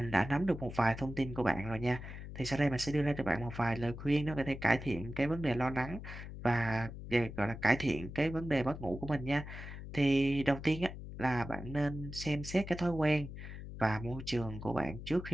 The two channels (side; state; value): left; noise; hum, 10 dB below the sound